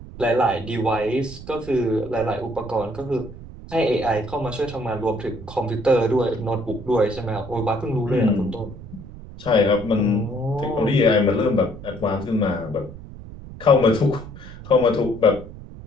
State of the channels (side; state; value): right; noise; rumble, 14 dB below the sound